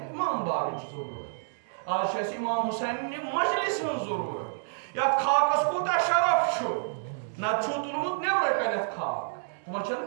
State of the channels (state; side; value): silent; left; digital silence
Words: imam bariç zarurat. Az şey İmam Hüseyin'in majlisin zarurat. Ya khakas kuta şaraf şu. Na çutulumut ne bırakanet khak.